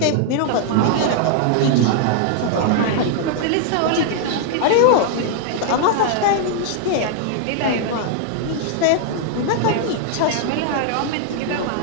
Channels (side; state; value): both; different; correlation 0.00